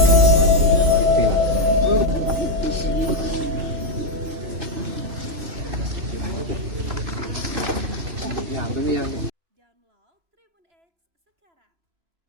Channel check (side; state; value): left; late; 3.0 ms